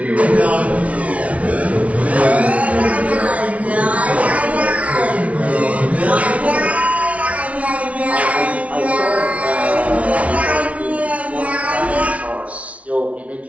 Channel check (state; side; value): late; left; 0.065 ms